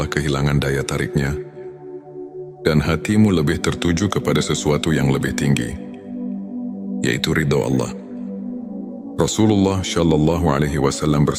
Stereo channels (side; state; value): both; identical; correlation 1.00